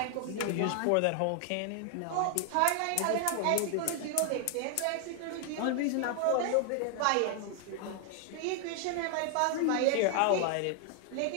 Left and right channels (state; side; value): different; both; correlation 0.00